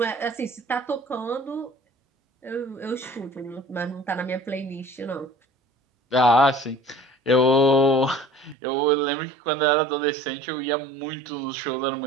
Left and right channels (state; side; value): drops out; left; at 8.6 s